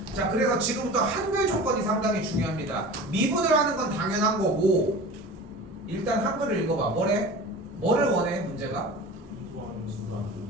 자, 그래서 지금부터 한글 조건이 상당히 중요합니다. 미분을 하는 건 당연한 거고, 일단 한글을 읽어봐. 뭐래? 뭐를 원해? 문제가?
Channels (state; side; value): normal; both; correlation 0.36